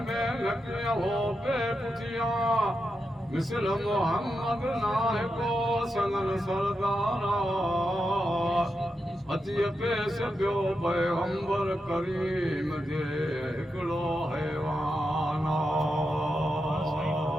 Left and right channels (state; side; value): normal; both; correlation 0.87